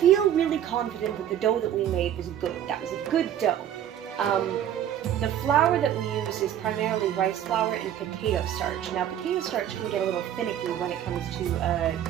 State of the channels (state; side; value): quieter; left; 10.5 dB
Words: really confident that the dough that we made was good. That was a good dough. The flour that we use is primarily rice flour and potato starch. Now, potato starch can get a little finicky when it comes to